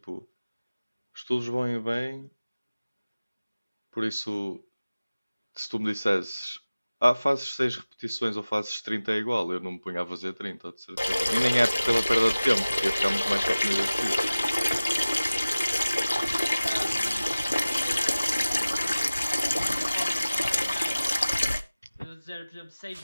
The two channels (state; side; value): inverted; both; correlation -0.97